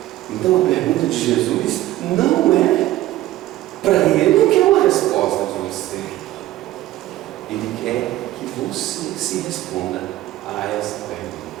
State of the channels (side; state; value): left; quieter; 15.4 dB